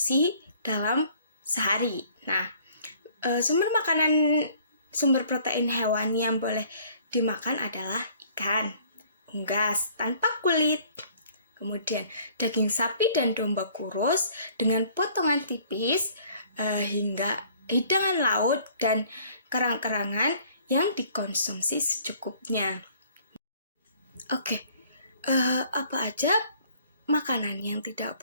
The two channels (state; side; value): inverted; both; correlation -0.56